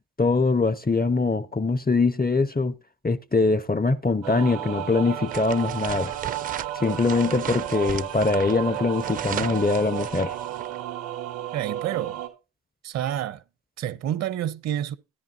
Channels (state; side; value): normal; both; correlation 0.56